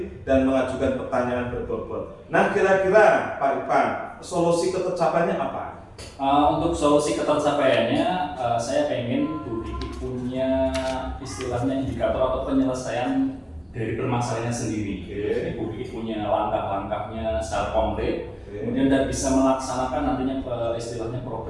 dan mengajukan pertanyaan berbobot. Nah, kira-kira Pak Irfan, solusi ketercapaiannya apa? Untuk solusi ketercapaiannya, saya pengen Bu Kiki punya istilahnya indikator atau penyelesaian dari permasalahannya sendiri. Jadi Bu Kiki punya langkah-langkahnya secara konkret, kemudian dan bisa melaksanakan nantinya istilahnya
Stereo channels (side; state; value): both; identical; correlation 1.00